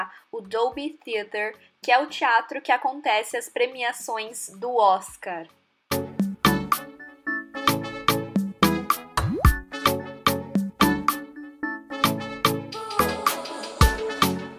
o Dolby Theatre, que é o teatro que acontece as premiações do Oscar.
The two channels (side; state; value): both; identical; correlation 1.00